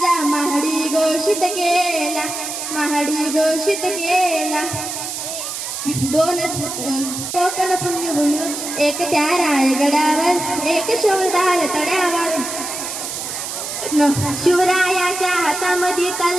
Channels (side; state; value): right; noise; hiss, 6 dB below the sound